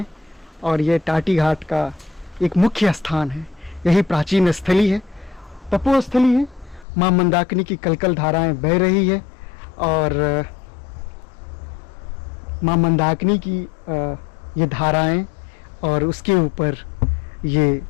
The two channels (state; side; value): drops out; right; at 6.9 s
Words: और ये टाटी घाट का एक मुख्य स्थान है। यही प्राचीन स्थली है, तपोस्थली है। माँ मंदाकिनी की कलकल धाराएं बह रही है और माँ मंदाकिनी की ये धाराएं और उसके ऊपर ये